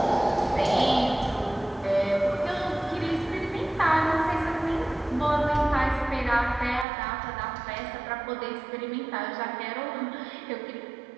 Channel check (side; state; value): left; drops out; at 6.9 s